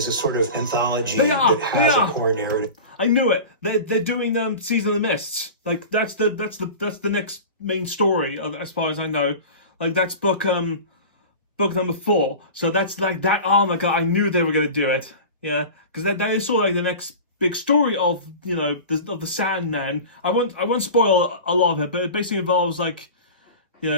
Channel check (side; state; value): both; inverted; correlation -0.33